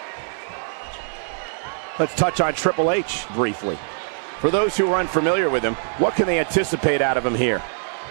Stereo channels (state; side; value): silent; left; digital silence